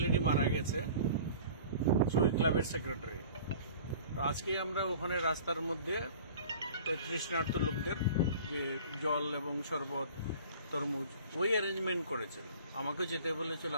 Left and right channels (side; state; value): both; inverted; correlation -0.45